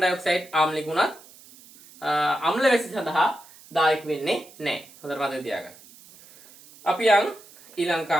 ආම්ලික වුණත් අම්ල වැසි සඳහා දායක වෙන්නේ නැහැ. හොඳට මතක තියාගන්න. අපි යන් ඊළඟ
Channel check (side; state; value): right; noise; hiss, 23 dB below the sound